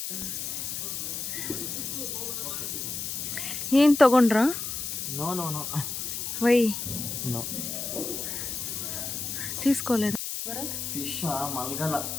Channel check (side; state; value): left; noise; hiss, 4 dB below the sound